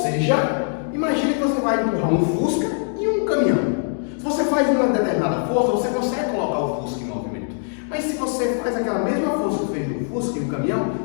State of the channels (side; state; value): right; silent; digital silence